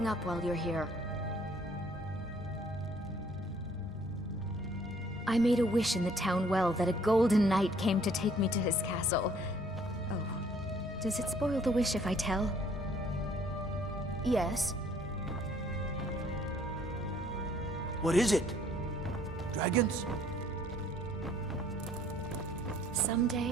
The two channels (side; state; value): both; normal; correlation 0.60